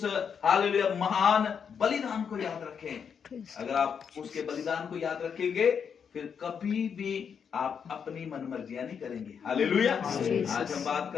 हालेलुया महान बलिदान को याद रखें। अगर आप उसके बलिदान को याद रखेंगे फिर कभी भी आप अपनी मनमर्जियां नहीं करेंगे। हालेलुया आज हम बात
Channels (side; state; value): right; quieter; 7.0 dB